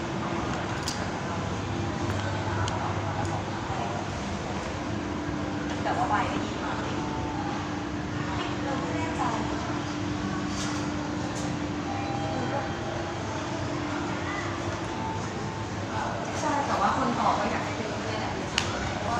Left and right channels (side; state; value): both; identical; correlation 1.00